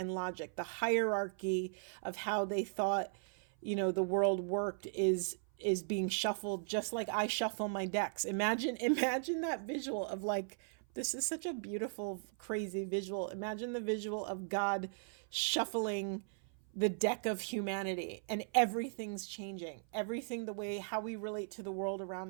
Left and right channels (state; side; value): silent; left; 53 dB below the other